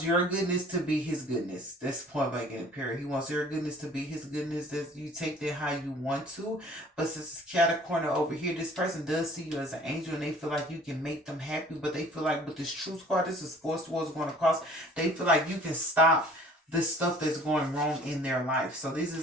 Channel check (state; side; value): normal; both; correlation 0.51